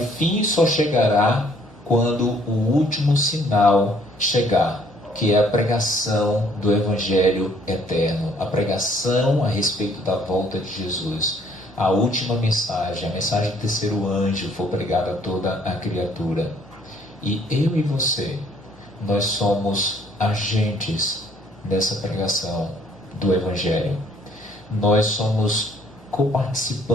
só chegará quando o último sinal chegar, que é a pregação do Evangelho eterno, a pregação a respeito da volta de Jesus. A última mensagem, a mensagem do terceiro anjo, for pregada a toda a criatura. E eu e você, nós somos agentes dessa pregação do Evangelho. Nós somos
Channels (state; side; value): normal; both; correlation 0.62